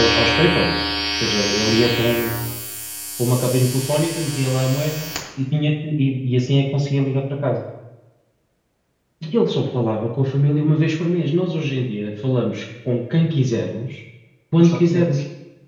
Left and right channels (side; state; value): both; identical; correlation 1.00